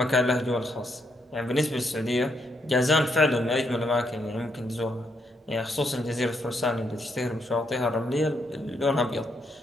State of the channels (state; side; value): normal; both; correlation 0.77